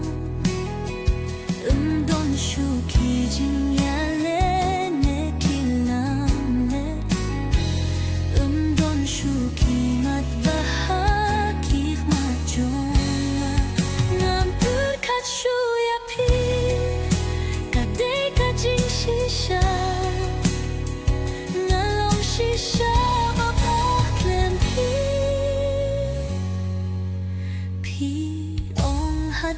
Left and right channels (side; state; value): both; identical; correlation 1.00